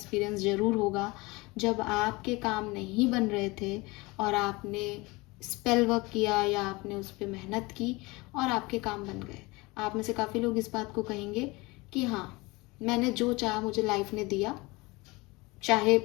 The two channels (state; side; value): quieter; right; 23.7 dB